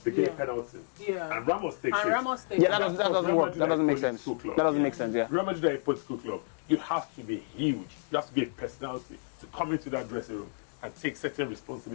they get a penalty. And Ramos takes it. Yeah, that doesn't make sense. That doesn't make sense, yeah. Real Madrid are a political club. You have to be huge. You have to be a personality to come into that dressing room and take certain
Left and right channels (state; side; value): silent; right; digital silence